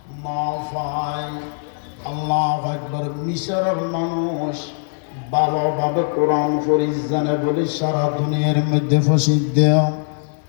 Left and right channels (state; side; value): silent; right; digital silence